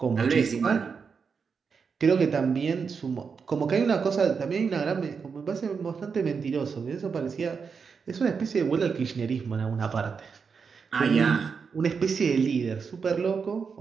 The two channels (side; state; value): left; quieter; 5.7 dB